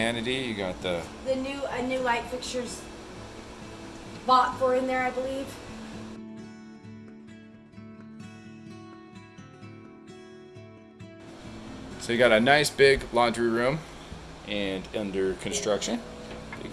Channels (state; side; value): identical; both; correlation 1.00